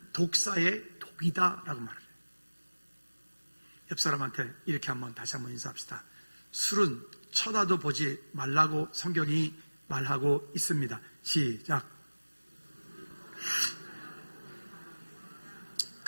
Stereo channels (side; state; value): both; inverted; correlation -1.00